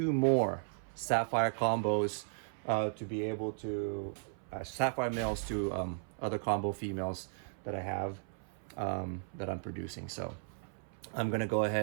more sapphire combos to be able to sapphire males to other combo females that I have that I'm producing. So I'm gonna go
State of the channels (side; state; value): left; silent; 54 dB below the other